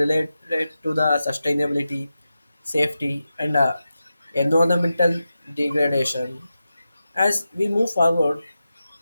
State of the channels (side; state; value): both; inverted; correlation -0.91